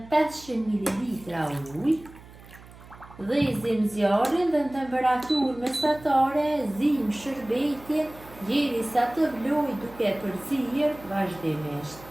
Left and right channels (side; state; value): right; noise; hum, 20 dB below the sound